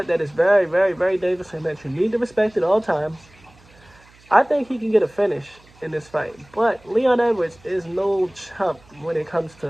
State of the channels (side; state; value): right; noise; hum, 28 dB below the sound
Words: that is very, very, very dangerous and that you need to respect at all times. I think he can get a finish in this fight. But Leon Edwards is no chump when it comes